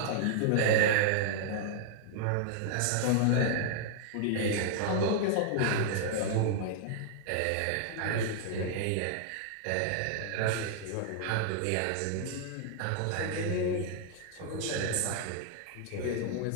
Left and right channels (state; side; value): different; both; correlation -0.01